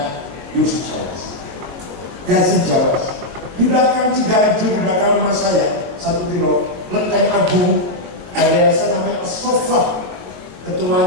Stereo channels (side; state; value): left; late; 22 ms